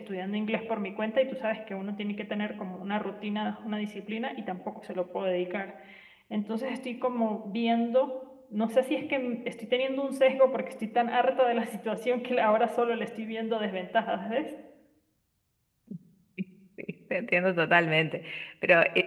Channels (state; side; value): identical; both; correlation 1.00